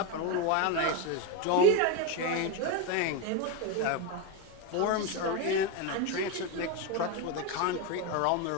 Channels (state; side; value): different; both; correlation 0.03